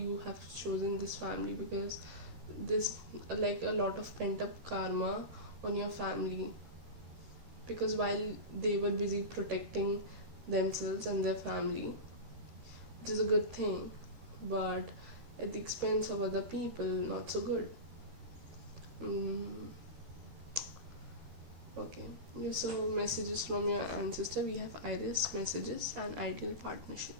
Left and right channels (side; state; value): left; late; 13 ms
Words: have chosen this family, because this, like, a lot of pent up karma on your family, because while they were busy protecting themselves and their family, it is a good thing, but at the expense of other people, not so good. mm, okay, so messages from your ancestor. We have Iris messages and ideal partnership.